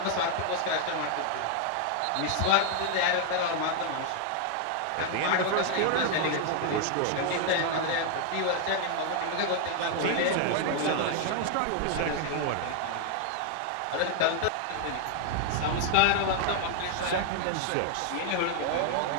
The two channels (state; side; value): different; both; correlation 0.00